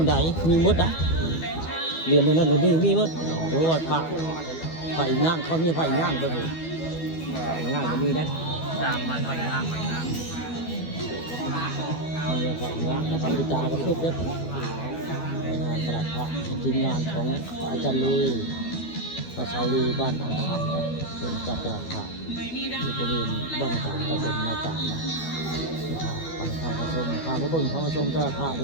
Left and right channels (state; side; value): late; right; 12 ms